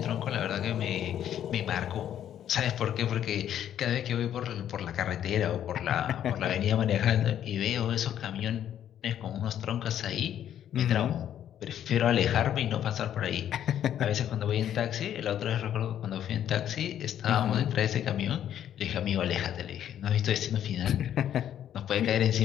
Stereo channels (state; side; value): quieter; right; 10.4 dB